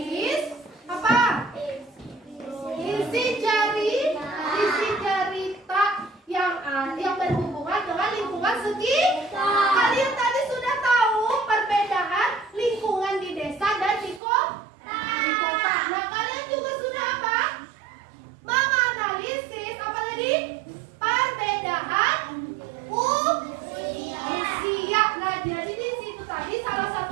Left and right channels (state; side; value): drops out; left; at 14.2 s